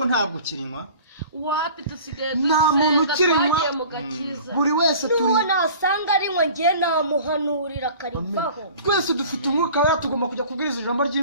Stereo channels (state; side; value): inverted; both; correlation -0.44